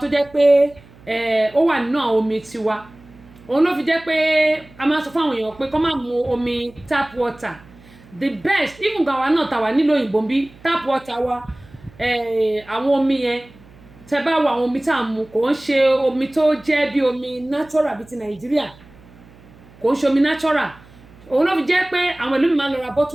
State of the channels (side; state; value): right; noise; hum, 24 dB below the sound